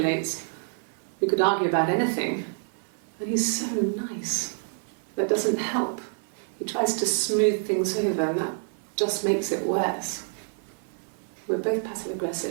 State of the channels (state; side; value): silent; left; digital silence